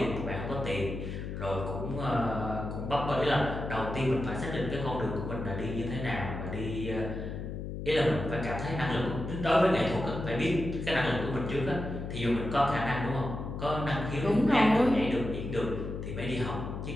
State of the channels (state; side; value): noise; left; hum, 6 dB below the sound